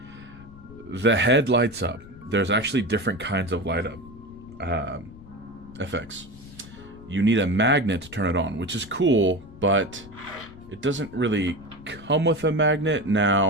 the head lights up. There's actually different kinds of light up effects. You need a magnet to turn it on, which is cool, but it doesn't really come with a magnet.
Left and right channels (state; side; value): noise; left; rumble, 19 dB below the sound